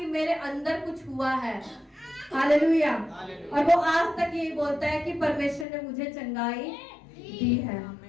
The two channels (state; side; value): drops out; right; at 5.7 s